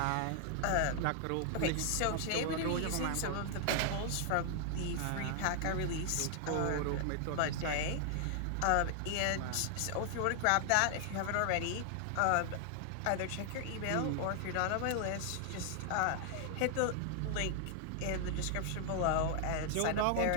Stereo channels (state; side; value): different; both; correlation 0.00